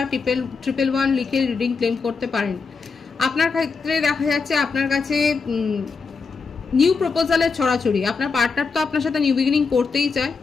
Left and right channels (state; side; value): quieter; right; 4.9 dB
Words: 111 লিখে রিডিং ক্লেম করতে পারেন। আপনার ক্ষেত্রে দেখা যাচ্ছে আপনার কাছে নিউ প্রপোজালের ছড়াছড়ি। আপনার পার্টনার তো আপনার সাথে নিউ বিগিনিং করতেই চায়,